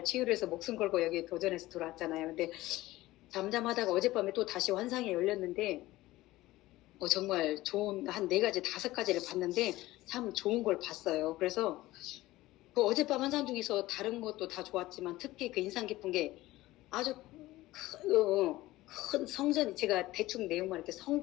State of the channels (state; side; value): quieter; right; 17.4 dB